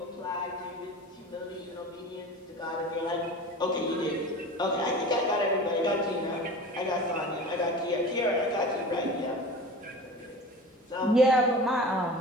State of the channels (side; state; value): both; normal; correlation 0.36